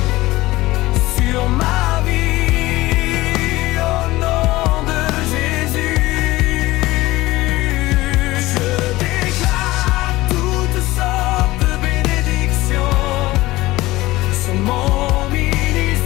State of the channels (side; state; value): right; quieter; 18.6 dB